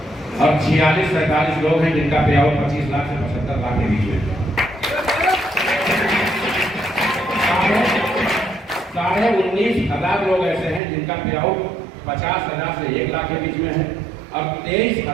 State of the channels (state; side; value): drops out; left; at 10.8 s